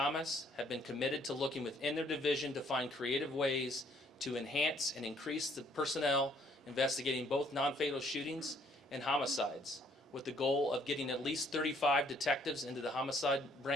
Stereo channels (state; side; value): normal; both; correlation 0.65